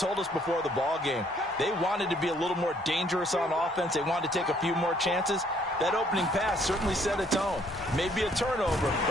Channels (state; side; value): normal; both; correlation 0.64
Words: us before the ball game, they wanted to be a little more dangerous on offense. They wanted to take a few more chances. That opening pass certainly set a tone. Maybe a turnover,